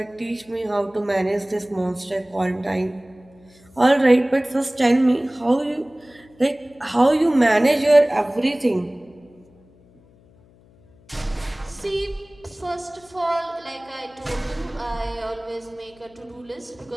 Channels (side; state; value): left; noise; hum, 28 dB below the sound